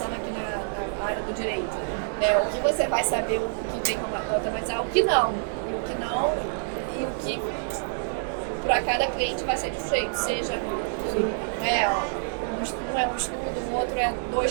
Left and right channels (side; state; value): left; silent; digital silence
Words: aqui na área do direito. O que você vai saber, o que tem como automatizar, o que não. E o que para cada cliente vai ser de jeito, seja um é um estudo, um outro é